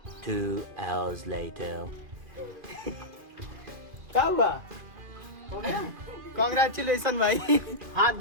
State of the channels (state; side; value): late; left; 2.4 ms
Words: 2 hours later. क्या हुआ? कांग्रेचुलेशन भाई। हाथ